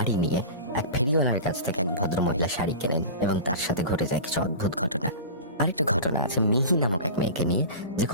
নিয়ে। এক ফেরিওয়ালার কাছ থেকে এক ভদ্র মহিলা শাড়ি কেনেন এবং তার সাথে ঘটে যায় কিছু অদ্ভুত ঘটনা। আরেকটা ঘটনা আছে মিহি নামক এক মেয়েকে নিয়ে, যে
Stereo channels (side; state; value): both; inverted; correlation -0.31